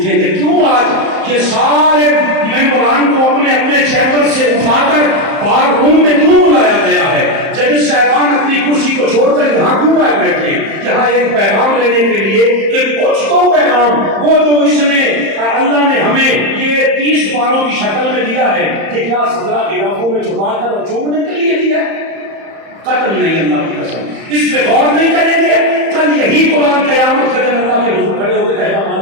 گے. کیوں آج یہ سارے ممبران کو اپنے اپنے چیمبر سے اٹھا کر بار روم میں کیوں بلایا گیا ہے؟ جج صاحبان اپنی کرسی کو چھوڑ کر یہاں کیوں آئے بیٹھے ہیں؟ یہاں ایک پیغام لینے کے لیے, ایک کچھ تو پیغام وہ جو اس نے اللہ نے ہمیں یہ 30 باروں کی شکل میں دیا ہے کہ کیا 17 علاقوں میں چھپا کر چومنے کے لیے دیا ہے. قتل نہیں, اللہ کی قسم, اس پہ غور نہیں کریں گے. کل یہی قرآن قیامت کے دن اللہ کے حضور کھڑے ہو کے کہتا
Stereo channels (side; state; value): left; late; 31 ms